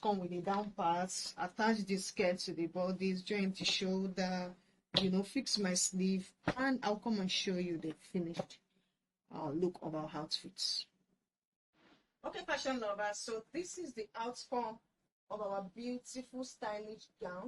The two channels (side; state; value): both; identical; correlation 1.00